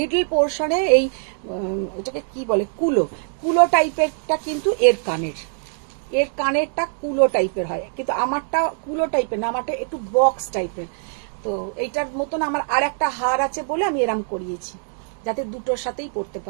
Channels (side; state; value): left; silent; digital silence